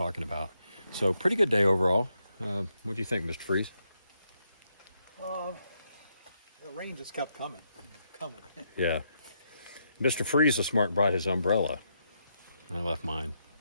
about. So pretty good day overall. What do you think, Mr. Freeze? The rain just kept coming. Yeah. Mr. Freeze was smart and brought his umbrella. I left mine,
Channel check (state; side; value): inverted; both; correlation -0.80